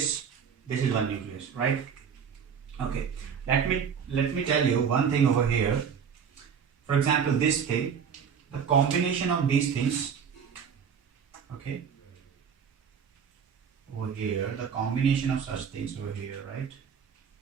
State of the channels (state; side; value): quieter; left; 7.1 dB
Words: is one nucleus, right? Okay. Let me tell you one thing over here. For example, this thing, the combination of these things, okay, over here, the combination of such things over here, right?